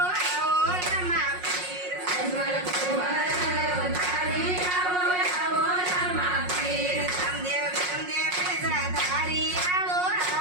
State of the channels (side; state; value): left; late; 5.5 ms